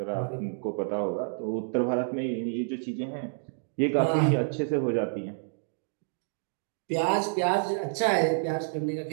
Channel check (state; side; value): silent; left; digital silence